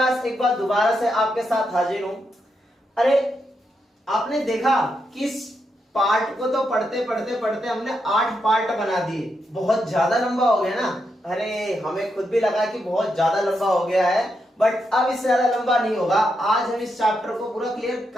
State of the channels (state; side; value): normal; both; correlation 0.83